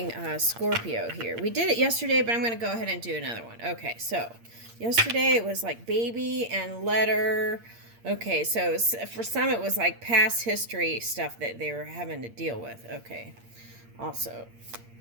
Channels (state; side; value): late; left; 8.7 ms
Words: Scorpio here. We did it yesterday, but I'm going to go ahead and do another one. Okay, so yesterday it was like baby and letter. Okay, so for some it was like past history stuff that they were having to deal with. Okay, also,